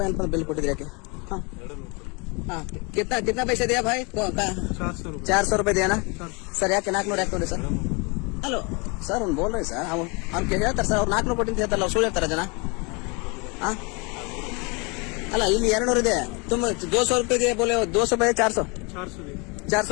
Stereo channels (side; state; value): right; quieter; 30.5 dB